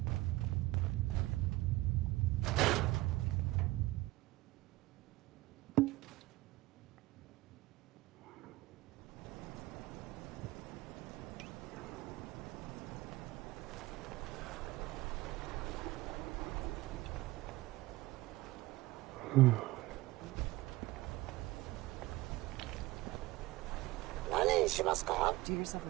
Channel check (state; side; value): quieter; left; 19.2 dB